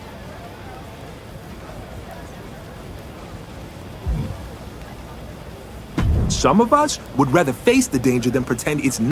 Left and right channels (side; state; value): both; identical; correlation 1.00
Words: Some of us would rather face the danger than pretend it's